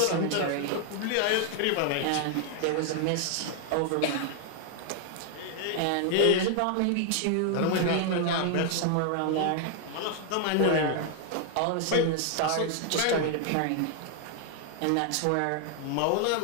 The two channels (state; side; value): different; both; correlation 0.00